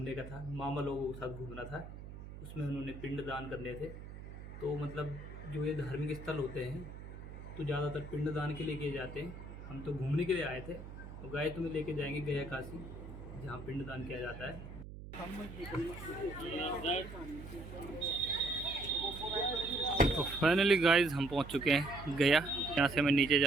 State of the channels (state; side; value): noise; right; hum, 12 dB below the sound